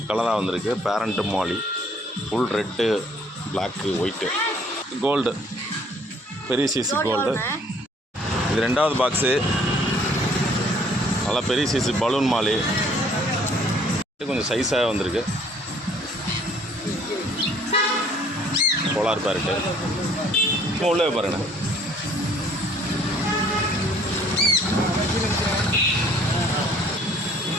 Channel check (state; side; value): normal; both; correlation 0.59